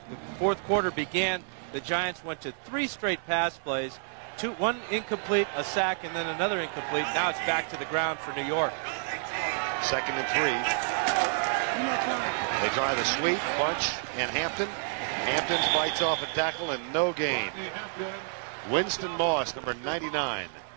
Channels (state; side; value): silent; left; 58 dB below the other